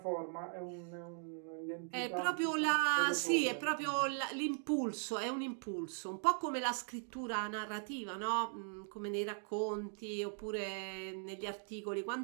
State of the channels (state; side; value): silent; left; 52 dB below the other